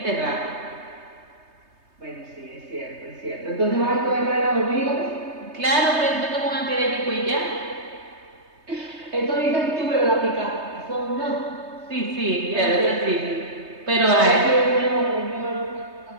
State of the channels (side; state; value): left; late; 3.2 ms